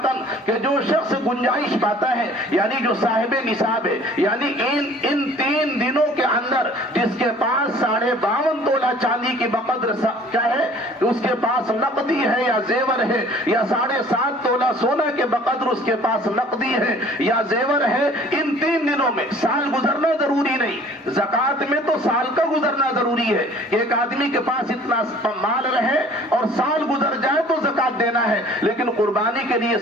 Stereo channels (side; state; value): both; normal; correlation 0.51